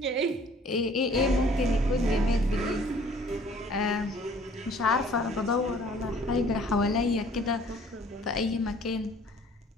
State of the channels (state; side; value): normal; both; correlation 0.54